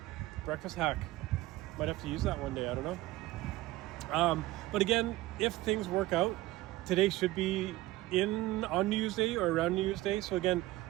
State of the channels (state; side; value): quieter; left; 17.4 dB